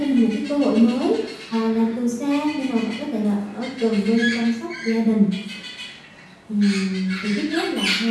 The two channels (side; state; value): both; identical; correlation 1.00